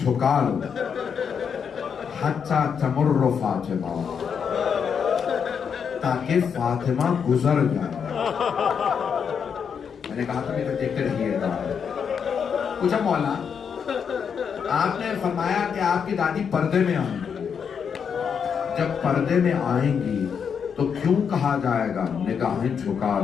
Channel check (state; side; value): quieter; right; 6.9 dB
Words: لو, حتی تمر فاطمہ, تاکہ فاطمہ گزر جائے. میں نے کہا تھا کہ دیکھتے رہیے گا. پوچھا مولا آپ نے فرمایا کہ آپ کی دادی پردے میں آئیں گی, جب پردے میں آئیں گی تو کیوں کہا جائے گا نگاہیں جھکا